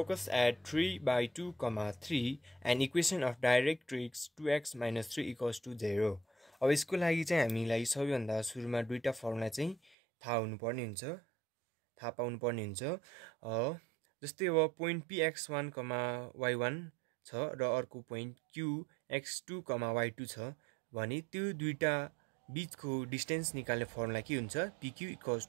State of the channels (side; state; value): left; drops out; at 10.0 s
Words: at 3 by 2, 3 and equation of directrix 2x minus 3 equals to 0. अब यसको लागि चाहिँ हामीलाई सबैभन्दा सुरुमा दुईटा फर्मुला चाहिँ थाहा हुनुपर्ने हुन्छ, थाहा पाउनुपर्ने हुन्छ। जस्तै अब पोइन्ट px1, y1 छ र अर्को पोइन्ट qx2, y2 छ भने त्यो दुईटा बीचको डिस्टेन्स निकाल्ने फर्मुला के हुन्छ? pq equals